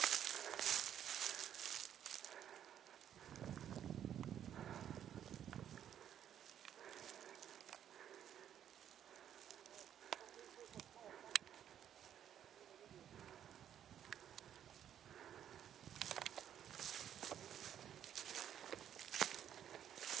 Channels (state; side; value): quieter; left; 9.9 dB